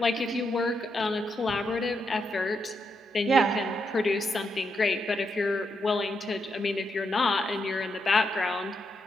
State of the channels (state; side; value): normal; both; correlation 0.81